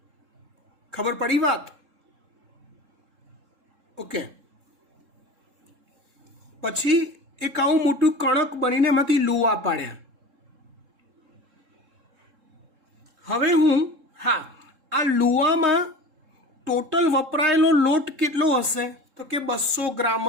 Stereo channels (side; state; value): left; late; 3.7 ms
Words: ખબર પડી વાત? ઓકે. પછી એક આવું મોટું કણક બનીને એમાંથી લુવા પાડ્યા. હવે આ લુવામાં ટોટલ વપરાયેલો લોટ કેટલો હશે? તો કે 200 ગ્રામ